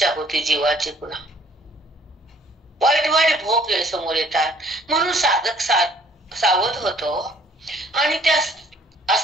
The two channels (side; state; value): both; normal; correlation 0.58